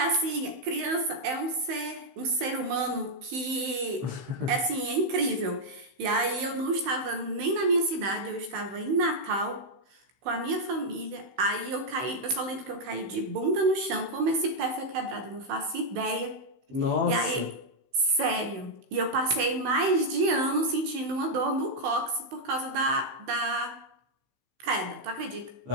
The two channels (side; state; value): left; late; 15 ms